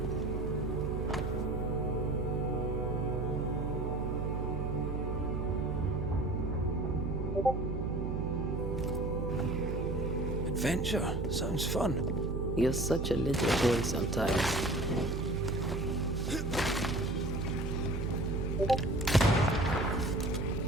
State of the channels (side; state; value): right; noise; hum, 2 dB below the sound